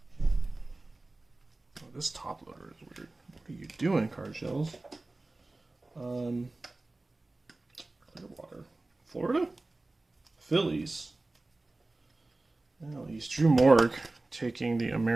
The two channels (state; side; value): quieter; left; 3.0 dB